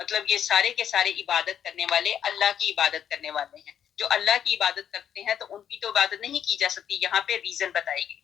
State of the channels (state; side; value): quieter; right; 9.2 dB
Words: مطلب یہ سارے کے سارے عبادت کرنے والے اللہ کی عبادت کرنے والے ہیں، جو اللہ کی عبادت کرتے ہیں تو ان کی تو عبادت نہیں کی جا سکتی۔ یہاں پہ ریزن بتائی گئی